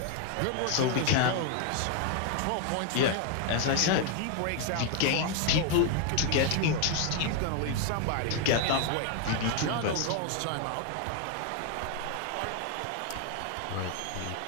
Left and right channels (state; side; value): different; both; correlation 0.01